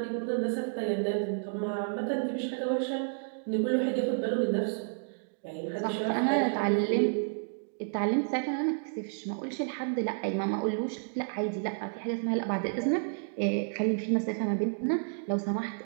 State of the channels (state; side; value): silent; left; digital silence